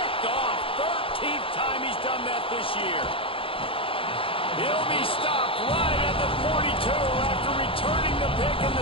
off. 13th time he's done that this year. He'll be stopped right at the 42 after returning the pick, and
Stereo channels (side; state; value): right; late; 0.26 ms